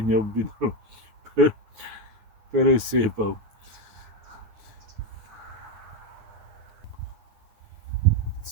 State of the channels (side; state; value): left; late; 9.4 ms